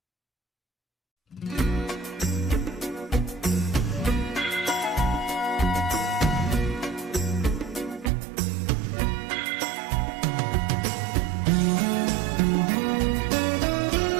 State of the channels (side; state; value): left; drops out; at 8.1 s